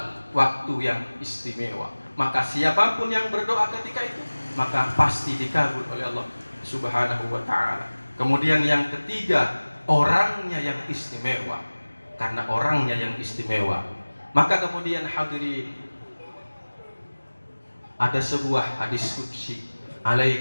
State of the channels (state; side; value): inverted; both; correlation -1.00